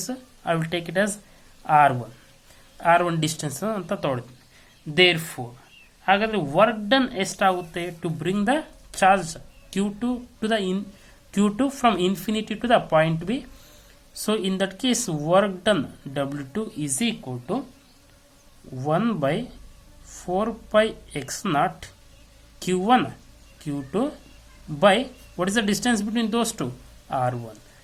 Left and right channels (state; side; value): identical; both; correlation 1.00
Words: I will take it as r1 distance ಅಂತ ತೊಗೊಳ್ತೀನಿ. Therefore ಹಾಗಾದರೆ work done ಎಷ್ಟಾಗುತ್ತೆ to bring the charge q2 to the q2 from infinity to the point B. So in that case work done W2 is equal to 1/4πx0 q1 q2 by what is the distance between those two? r1.